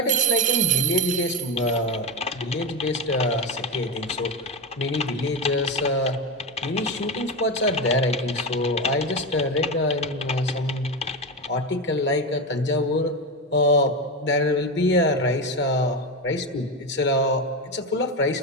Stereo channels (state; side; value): normal; both; correlation 0.17